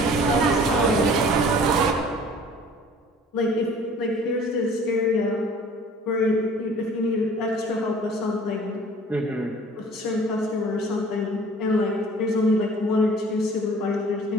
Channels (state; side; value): normal; both; correlation 0.49